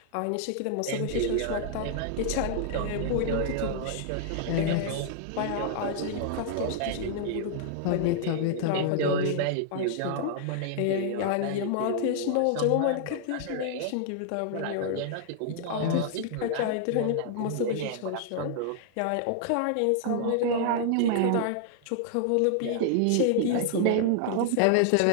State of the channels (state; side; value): different; both; correlation -0.01